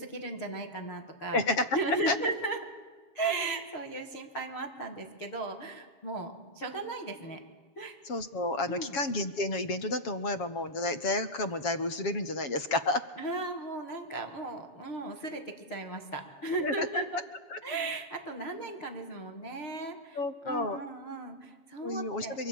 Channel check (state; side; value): late; right; 7.3 ms